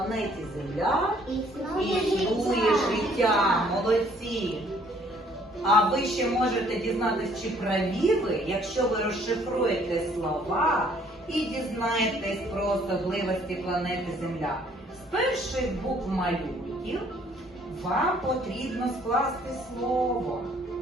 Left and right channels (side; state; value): both; normal; correlation 0.61